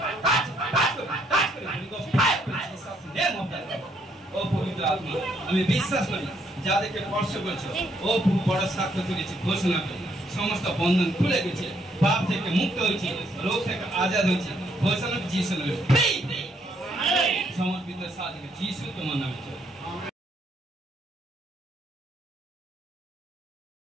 টাচ টাচ করে টাচ করে ফায়ার করে Jesus name of the Lord. ও পবিত্র আত্মা আমি বিশ্বাস করি যাদেরকে স্পর্শ করেছো, ও বড় সাক্ষ্য তুলেছি, ঘোষণা করি সমস্ত বন্ধন খুলে গেছে, পাপ থেকে মুক্ত হয়েছে, রোগ থেকে আজাদ হয়েছে। ঘোষণা যিশু নামে ফ্রি সমর্পিত সাথে যিশু তোমার নামে চলে।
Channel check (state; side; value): normal; both; correlation 0.71